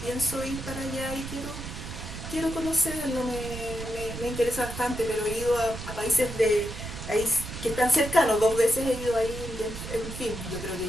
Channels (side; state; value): right; noise; rumble, 9 dB below the sound